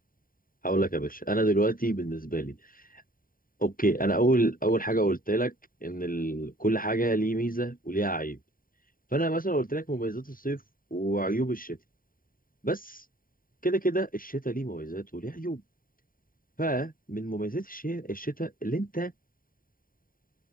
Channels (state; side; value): late; right; 0.41 ms